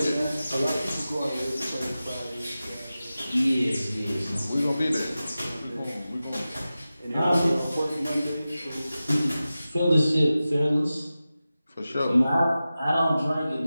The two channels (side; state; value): both; inverted; correlation -0.94